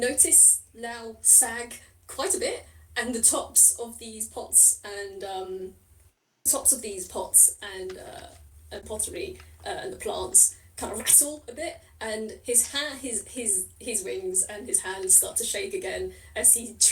Lau sag quite a bit, and the tops of these pots and pottery and the plants kind of rattle a bit, and his wings and his hands start to shake again as he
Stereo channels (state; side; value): identical; both; correlation 1.00